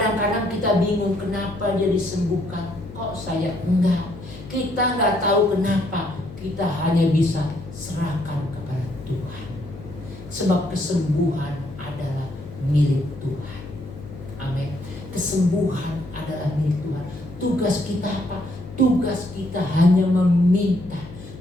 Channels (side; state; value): left; noise; hum, 15 dB below the sound